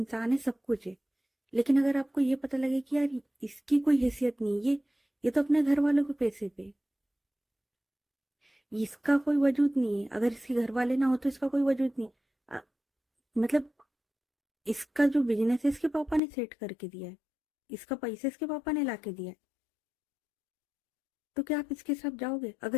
है, सब कुछ है, लेकिन अगर आपको ये पता लगे कि यार इसकी कोई हैसियत नहीं, ये तो अपने घर वालों के पैसे पे, इसका कोई वजूद नहीं है, अगर इसके घर वाले ना हो तो इसका कोई वजूद नहीं। अ, मतलब इसका जो बिजनेस है इसके पापा ने सेट करके दिया है, इसका पैसा इसके पापा ने ला के दिया है, तो क्या आप इसके साथ जाओगे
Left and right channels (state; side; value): drops out; right; at 16.2 s